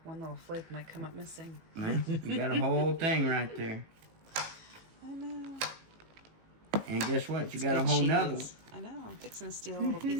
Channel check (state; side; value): late; left; 18 ms